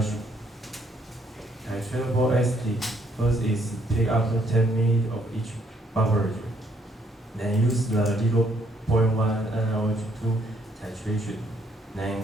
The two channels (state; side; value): normal; both; correlation 0.69